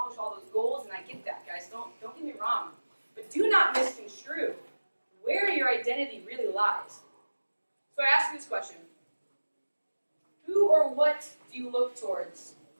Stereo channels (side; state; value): both; inverted; correlation -1.00